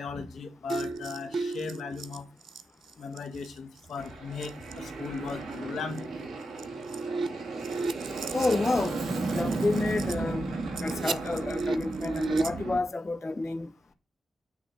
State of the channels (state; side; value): normal; both; correlation 0.87